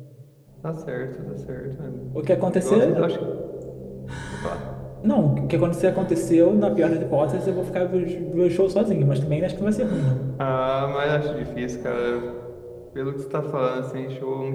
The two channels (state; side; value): identical; both; correlation 1.00